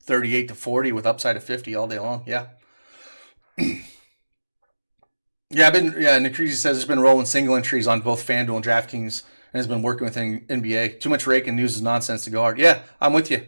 38 to 40 with upside of 50 all day long. Yeah. Nikrisi says it's been rolling single entries on both FanDuel and DraftKings and has been working with NBA. Too much rake and news is nonsense to go hard. Yeah, I'm with you.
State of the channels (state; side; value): inverted; both; correlation -1.00